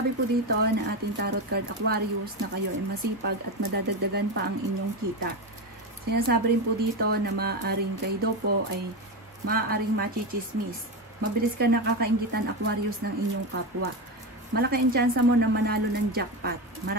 po dito na ating tarot card Aquarius na kayo ay masipag at madadagdagan pa ang inyong kita. Sinasabi rin po dito na maaaring kayo daw po ay maaaring machichismis. Mabilis ka nakakainggitan Aquarius ng inyong kapwa. Malaki ang tsansa mo na manalo ng jackpot.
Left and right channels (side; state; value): both; normal; correlation 0.16